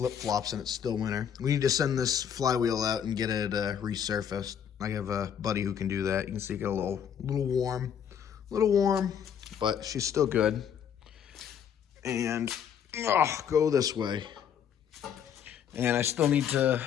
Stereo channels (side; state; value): right; quieter; 8.4 dB